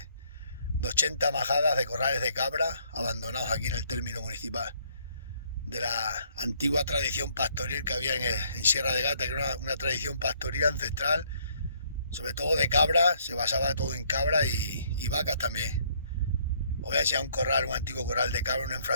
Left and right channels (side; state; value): both; inverted; correlation -0.66